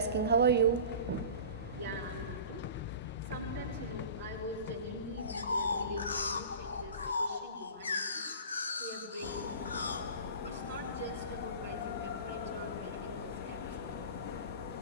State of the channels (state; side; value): inverted; both; correlation -0.35